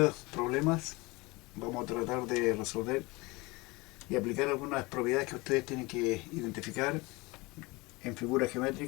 problemas vamos a tratar de resolver y aplicar algunas propiedades que ustedes tienen que identificar en figuras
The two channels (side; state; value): right; quieter; 24.2 dB